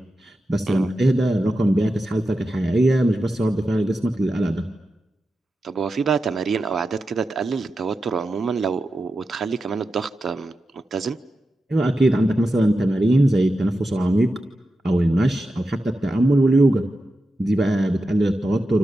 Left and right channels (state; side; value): normal; both; correlation 0.90